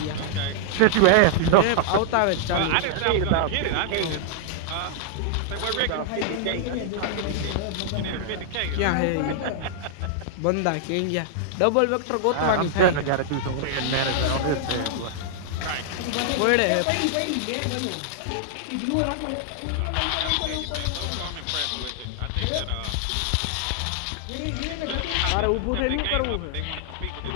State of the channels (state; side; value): different; both; correlation -0.01